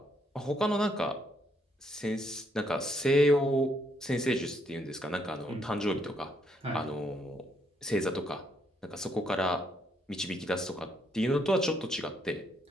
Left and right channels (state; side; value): normal; both; correlation 0.73